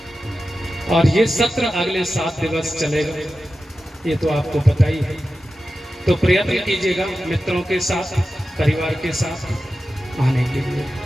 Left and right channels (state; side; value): normal; both; correlation 0.93